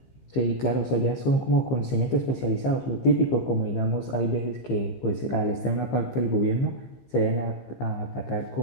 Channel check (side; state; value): right; late; 15 ms